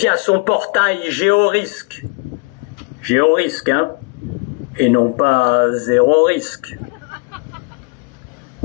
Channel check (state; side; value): quieter; right; 32.9 dB